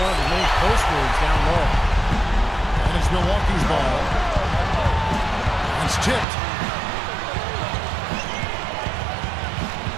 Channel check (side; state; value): left; drops out; at 6.2 s